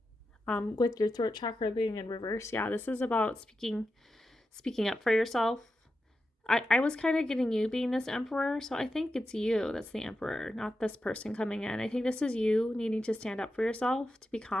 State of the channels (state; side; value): normal; both; correlation 0.89